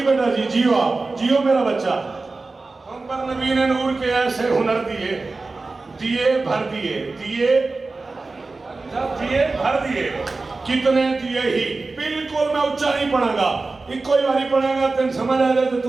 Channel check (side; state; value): left; quieter; 3.6 dB